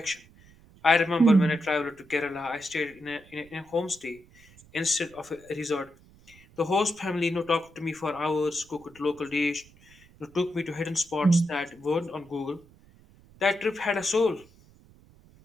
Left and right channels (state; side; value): noise; right; rumble, 26 dB below the sound